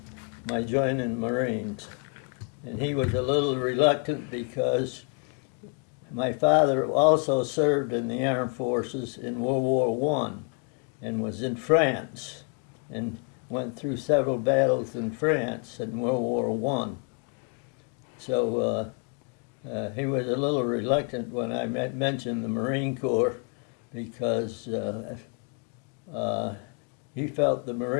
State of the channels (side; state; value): right; quieter; 37.5 dB